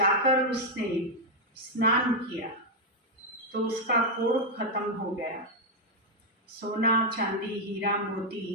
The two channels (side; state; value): both; normal; correlation 0.00